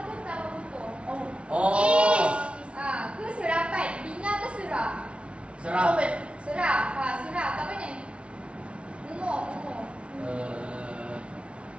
ke tambah tutup? Ke serapan? Bina ke serah? Sarah. Serah. Serah. Tak apa ni? Umur.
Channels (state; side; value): late; left; 0.060 ms